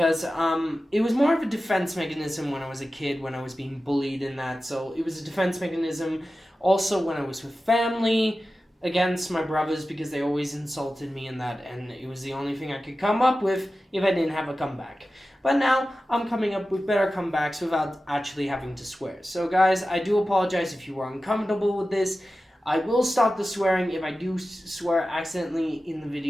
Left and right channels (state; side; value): normal; both; correlation 0.94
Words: it was more of a defense mechanism when I was a kid, when I was being bullied in that. So it was a defense mechanism also when I was with family against my brothers because they always insulted me in that, and it was the only thing I could come up with if I didn't have a comeback. But now I'm coming up with better comebacks without actually having to swear. So guys, I do apologize if you were uncomfortable with this. I will stop the swearing if I do swear accidentally in the